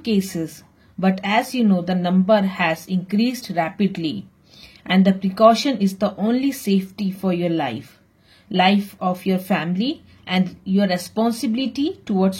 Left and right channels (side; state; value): both; identical; correlation 1.00